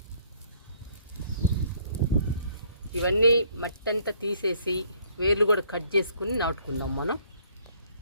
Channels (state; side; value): inverted; both; correlation -0.63